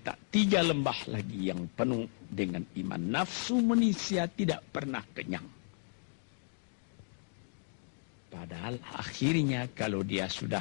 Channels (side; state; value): right; silent; 55 dB below the other